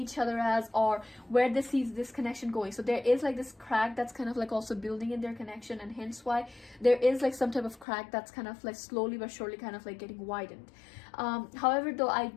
each other as, or where they see this connection going. So there is like this crack that's kind of like also building in their connection, and hence why there is like some type of crack that's kind of like slowly but surely kind of like getting widened. However though, I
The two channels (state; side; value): drops out; right; at 7.9 s